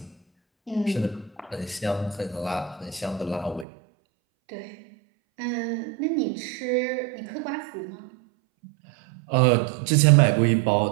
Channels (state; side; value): drops out; left; at 3.7 s